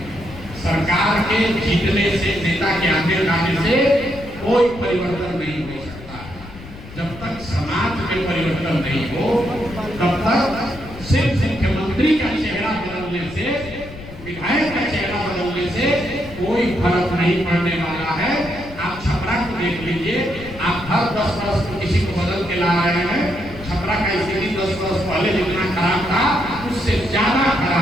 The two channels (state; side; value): noise; left; rumble, 15 dB below the sound